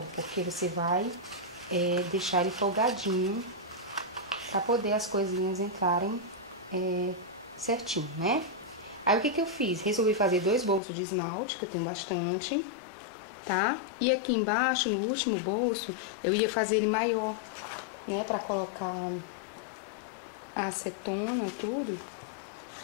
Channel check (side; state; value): right; drops out; at 10.8 s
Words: porque você vai deixar ele folgadinho para poder as coisinhas entrarem certinho, né? Aí o que eu fiz? Resolvi fazer 2 bolsos de esmalte, que eu tenho bastante, tá? E aqui embaixo, no último bolso, eu ia fazer ele maior, né? Pra colocar a acetona, tudo.